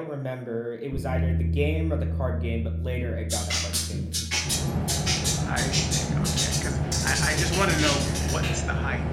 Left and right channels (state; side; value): identical; both; correlation 1.00